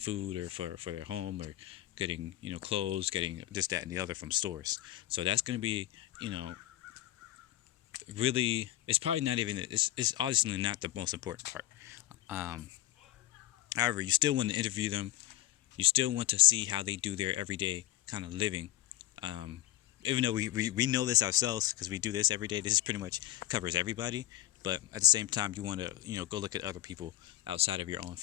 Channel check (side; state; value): right; quieter; 15.2 dB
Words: or for their home, or getting clothes, getting this, that, and the other from stores. So that's going to be you know really, it's probably not even, it's obviously not the most important part. um, However, you still want to interview them. You still want to see how they do their everyday kind of living. um, Even though we know this ourselves because we do this every day, this is pretty much covers everybody. But at the same time, you want to go look at other people outside of your own